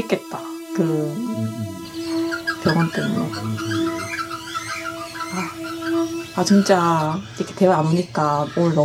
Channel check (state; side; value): identical; both; correlation 1.00